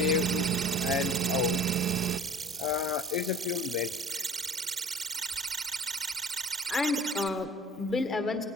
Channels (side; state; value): both; normal; correlation 0.45